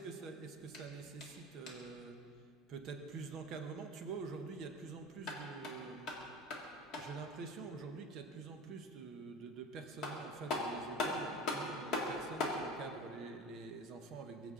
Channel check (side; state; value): both; normal; correlation 0.33